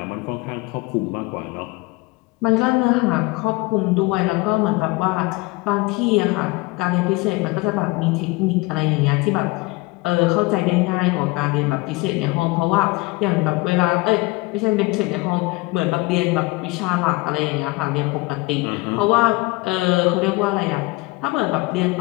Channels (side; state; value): right; quieter; 23.4 dB